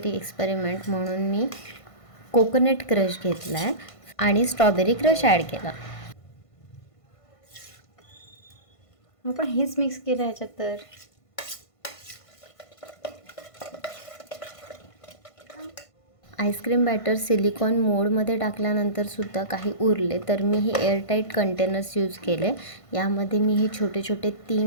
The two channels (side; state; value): right; late; 1.5 ms